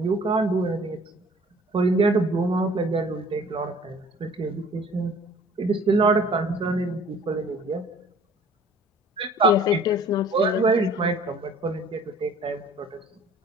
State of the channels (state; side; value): normal; both; correlation 0.52